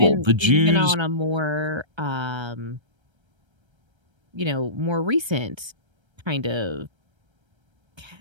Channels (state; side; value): late; left; 1.3 ms